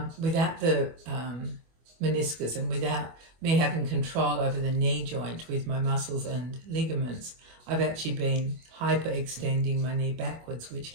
without the meniscus and without me having control over the knee joint with my muscles and ligaments, I've actually been hyperextending my knee backwards, which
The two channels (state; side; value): late; left; 25 ms